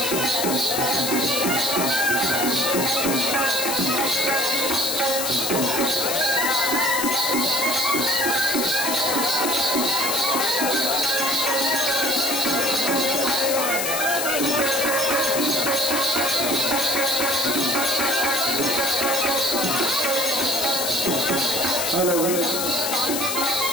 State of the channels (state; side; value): noise; left; hiss, 2 dB below the sound